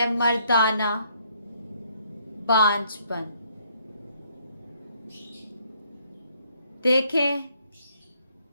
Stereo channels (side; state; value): both; inverted; correlation -0.68